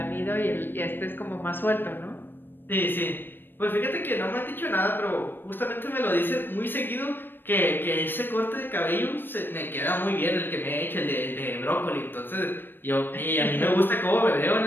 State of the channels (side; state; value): right; late; 0.096 ms